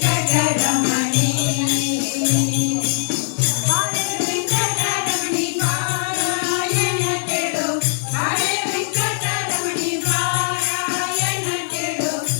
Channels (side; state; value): right; silent; digital silence